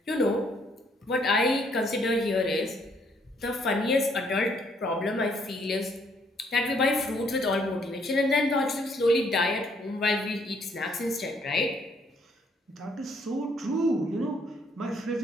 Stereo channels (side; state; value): both; normal; correlation 0.68